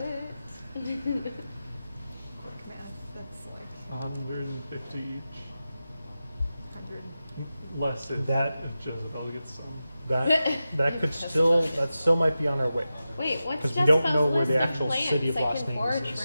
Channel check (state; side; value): inverted; both; correlation -0.93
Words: quick math? That's like 150 each. 100. Less if Jezebel gets some. That could still, that still might be on our way. Wait, what's 'Cause we don't Jezebel's know where the list of actual plants? city of I Los can Angeles forage is.